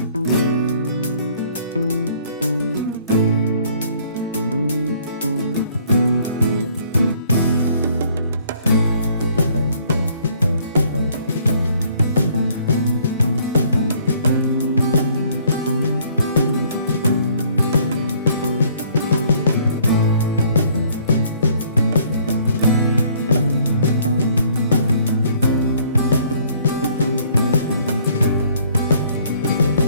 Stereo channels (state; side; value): inverted; both; correlation -0.61